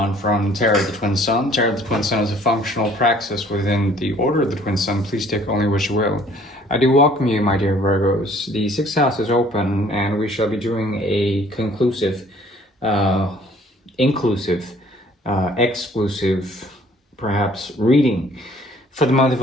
from Tarot of the Twin Sun. Tarot of the Twin Sun is a functional praxis within the Order of the Twin Sun. Please take only what you will. I do welcome you, my dear Virgos. The sixth house is open and we shall be doing a conclusive, inclusive, exclusive, perhaps reading for the month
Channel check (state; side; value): normal; both; correlation 0.57